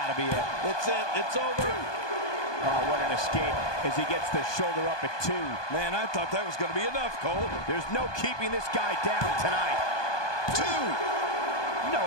to be it. It's it. It's over. Oh, what an escape as he gets the shoulder up at 2. Man, I thought that was going to be enough, Cole. There's no keeping this guy down tonight. 2. No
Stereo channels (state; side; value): late; right; 1.2 ms